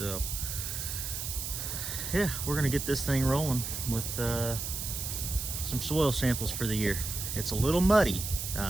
yeah, we're gonna get this thing rolling with some soil samples for the year. It's a little muddy,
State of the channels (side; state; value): right; noise; hiss, 4 dB below the sound